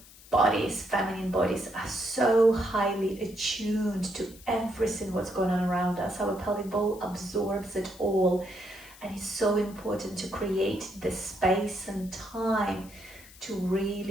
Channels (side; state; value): left; noise; hiss, 21 dB below the sound